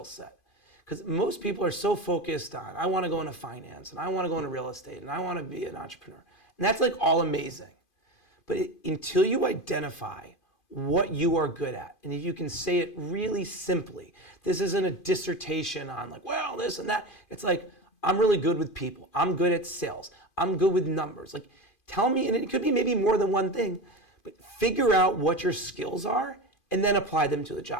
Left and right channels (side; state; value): right; late; 2.5 ms